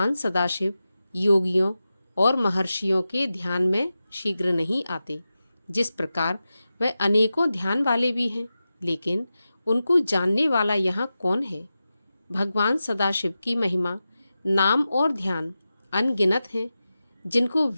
सदाशिव योगियों और महर्षियों के ध्यान में शीघ्र नहीं आते। जिस प्रकार वह अनेकों ध्यान वाले भी हैं, लेकिन उनको जानने वाला यहाँ कौन है? भगवान सदाशिव की महिमा, नाम और ध्यान अनगिनत हैं, जिनको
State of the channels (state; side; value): inverted; both; correlation -0.93